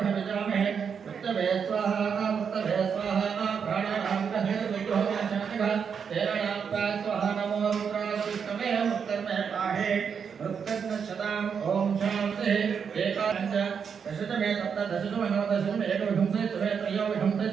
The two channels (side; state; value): left; quieter; 6.7 dB